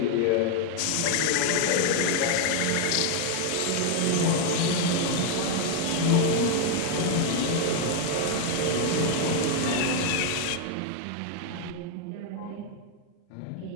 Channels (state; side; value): different; both; correlation 0.01